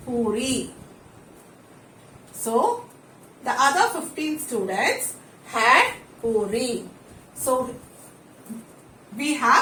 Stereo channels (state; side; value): identical; both; correlation 1.00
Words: puri. So the other 15 students had puri. So we